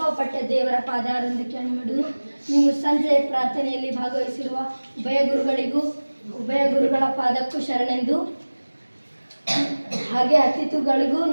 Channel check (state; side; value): inverted; both; correlation -1.00